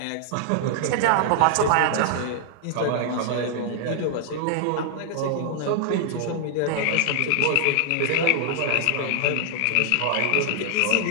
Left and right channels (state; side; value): different; both; correlation -0.01